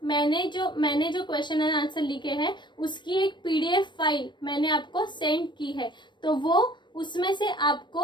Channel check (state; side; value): late; right; 0.22 ms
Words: मैंने जो क्वेश्चन एंड आंसर लिखे हैं उसकी एक पीडीएफ फाइल मैंने आपको सेंड की है। तो वो उसमें से